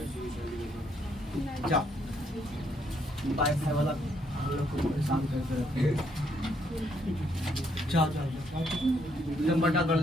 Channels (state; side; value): normal; both; correlation 0.72